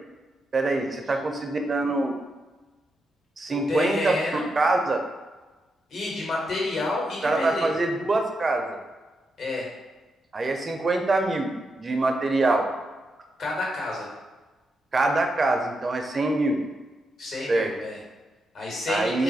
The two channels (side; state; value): both; normal; correlation 0.84